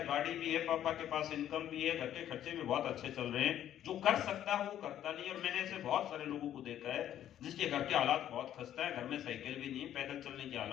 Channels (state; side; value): quieter; right; 11.2 dB